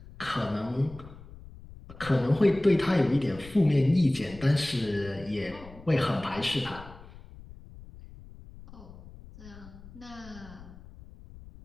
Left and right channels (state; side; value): noise; left; rumble, 18 dB below the sound